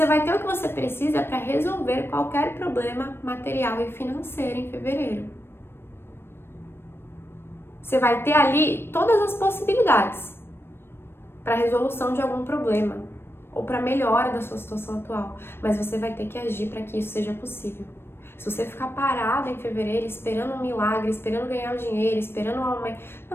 vai ter o que você precisa para resolver qualquer problema material e financeiro em fevereiro. Você vai ter ali todas as possibilidades para resolução de algum problema ou para melhora da sua situação atual, mas você vai ter que agir para que isso seja possível. Se você ficar parado em fevereiro esperando um milagre, esperando ganhar o dinheiro, esperando um aumento,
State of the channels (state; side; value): late; right; 0.11 ms